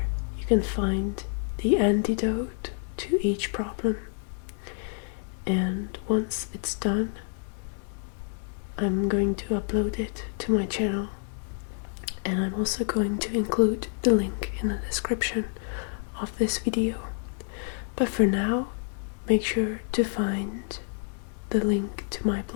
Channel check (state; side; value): silent; right; 59 dB below the other